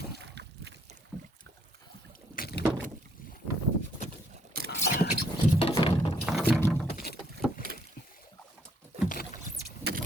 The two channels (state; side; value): normal; both; correlation 0.68